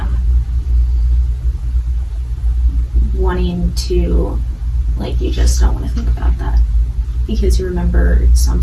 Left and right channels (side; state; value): both; identical; correlation 1.00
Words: wanting to, like, you just don't want to think about that because you remember some